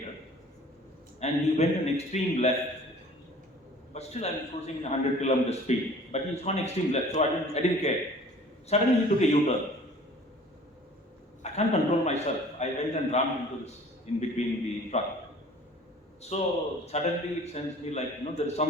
and he went an extreme left. But still, I'm cruising 100 kilometer speed. But he's gone extreme left, so I didn't care. Suddenly, he took a U-turn. I can't control myself. I went and rammed into this in between the truck. So suddenly, it sends me like, there is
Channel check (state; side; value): normal; both; correlation 0.48